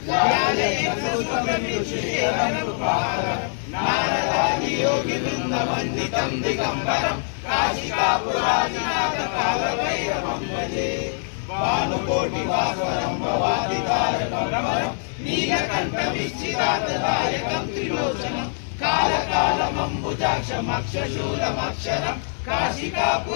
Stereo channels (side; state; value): right; silent; 56 dB below the other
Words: दिगम्बरं काशिकापुरादिनाथ कालभैरवं भजे। भानुकोटिभास्वरं भवादितारकं नीलकण्ठविच्छिदातदायकं त्रिलोचनं कालकालमम्बुजाक्षमक्षशूलमक्षरं